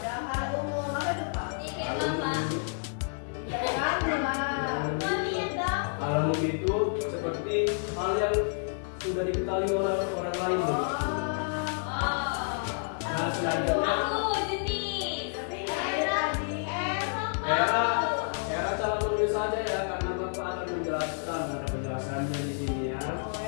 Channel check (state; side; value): silent; right; 58 dB below the other